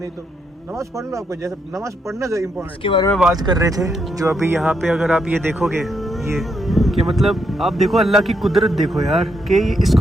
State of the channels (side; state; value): both; normal; correlation 0.78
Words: तो नमाज पढ़ लो, आपको जैसे नमाज पढ़ना चाहिए इम्पोर्टेंट। इसके बारे में बात कर रहे थे जो अभी यहाँ पे अगर आप ये देखोगे, ये कि मतलब आप देखो अल्लाह की कुदरत देखो यार, कि